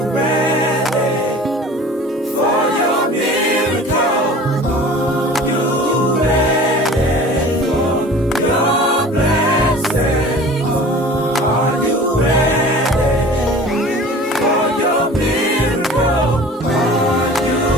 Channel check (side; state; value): both; normal; correlation 0.42